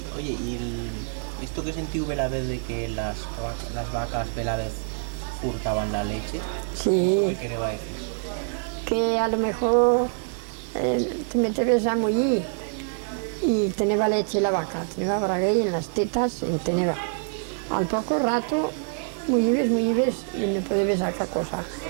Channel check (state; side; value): silent; left; 61 dB below the other